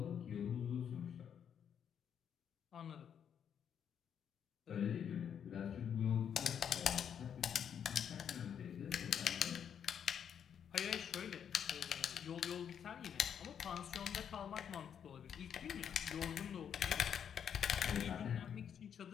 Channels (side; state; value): right; quieter; 8.3 dB